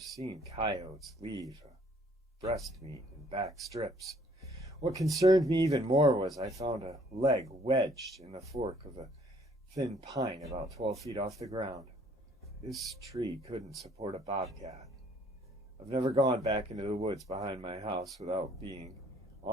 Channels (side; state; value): both; normal; correlation 0.61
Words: coyotes leave breast meat and back strips. What concerned me even more was I found a leg wedged in the fork of a thin pine about 12 feet off the ground. This tree couldn't support a bobcat. I've never gone back into the woods behind my house without being